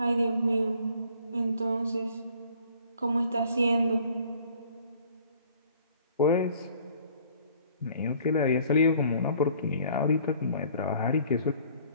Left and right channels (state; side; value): inverted; both; correlation -0.56